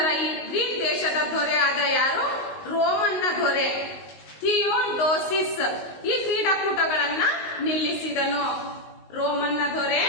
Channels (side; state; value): right; late; 19 ms